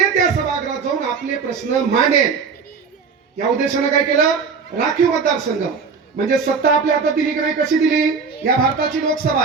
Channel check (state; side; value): quieter; left; 5.4 dB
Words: त्या सभागृहात जाऊन आपले प्रश्न मांडेल. या उद्देशानं काय केलं, राखीव मतदारसंघ. म्हणजे सत्ता आपल्या हातात दिली की नाही, कशी दिली, या भारताची लोकसभा